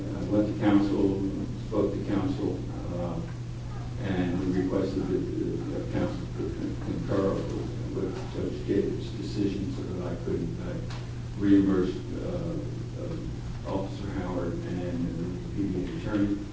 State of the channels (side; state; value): both; identical; correlation 1.00